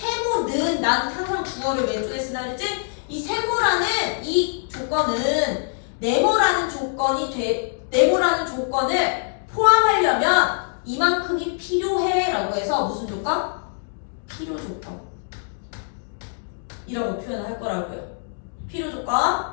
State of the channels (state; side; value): silent; right; digital silence